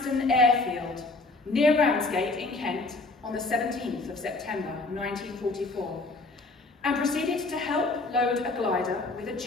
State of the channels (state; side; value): quieter; right; 3.4 dB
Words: Airfield, near Ramsgate in Kent, on the 17th of September 1944, and proceeded to help load a glider with a